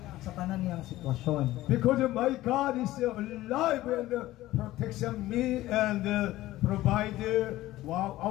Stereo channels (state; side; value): quieter; right; 16.2 dB